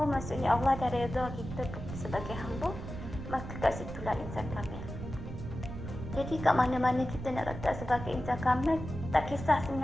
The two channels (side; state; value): right; noise; rumble, 8 dB below the sound